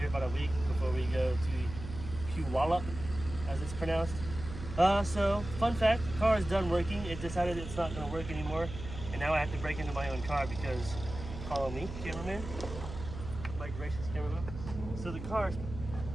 about a week before we go to Puyallup, as it's pronounced. So, fun fact, the car is done working. It decided it's not going to work anymore, and now I have to break into my own car because, follow me, cameraman, my gracious cameraman. So the car,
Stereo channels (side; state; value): right; noise; hum, 10 dB below the sound